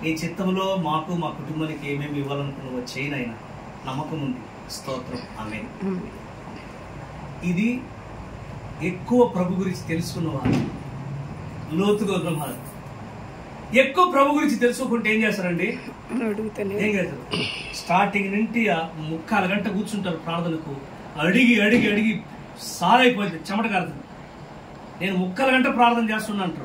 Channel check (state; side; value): identical; both; correlation 1.00